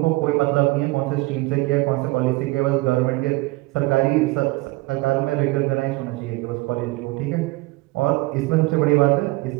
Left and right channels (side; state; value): left; quieter; 22.0 dB